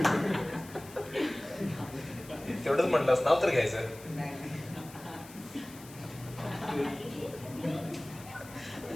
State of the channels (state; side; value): noise; left; hiss, 19 dB below the sound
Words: तेवढंच म्हटलंस, नाव तर घ्यायचं.